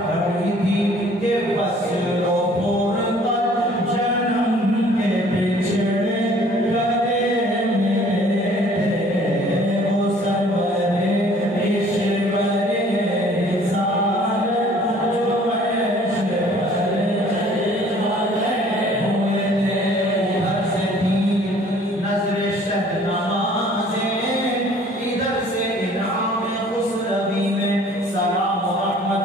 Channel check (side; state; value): both; normal; correlation 0.54